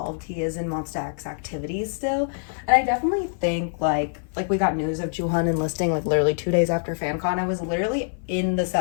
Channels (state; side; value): silent; right; 57 dB below the other